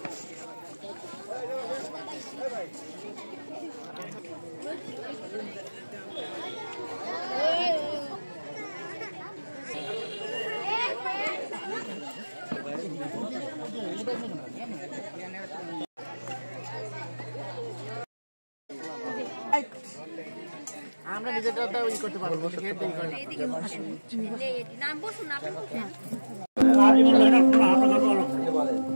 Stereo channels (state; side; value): inverted; both; correlation -1.00